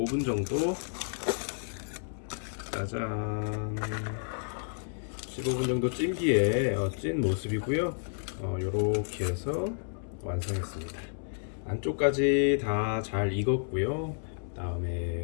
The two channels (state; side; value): silent; right; digital silence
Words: 정도. 짜잔. 15분 정도 찐 뒤에 찐 모습이고요. 요렇게 해서 완성했습니다. 안쪽까지 다 잘 익었고요.